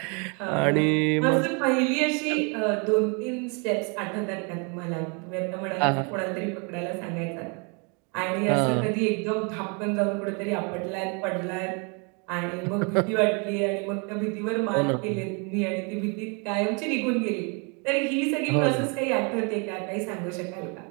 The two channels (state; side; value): quieter; left; 34.4 dB